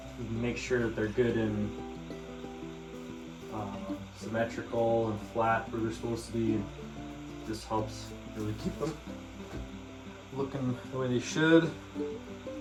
can make sure that they're good and symmetrical and flat where they're supposed to be. This helps really keep them looking the way they should.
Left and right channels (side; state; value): both; identical; correlation 1.00